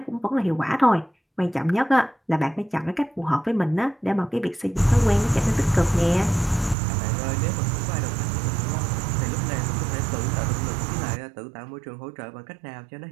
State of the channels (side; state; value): left; drops out; at 6.8 s